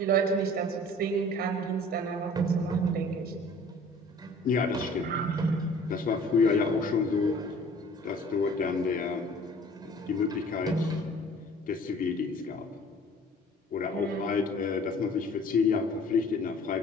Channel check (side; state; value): both; normal; correlation 0.49